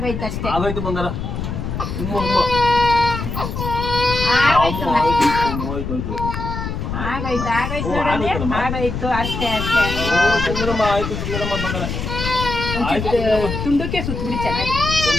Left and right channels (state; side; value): noise; left; rumble, 5 dB below the sound